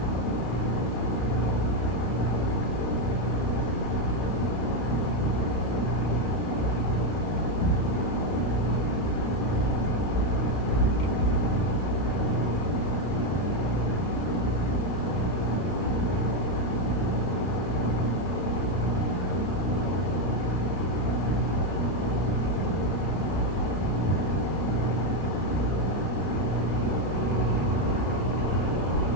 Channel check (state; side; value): late; right; 33 ms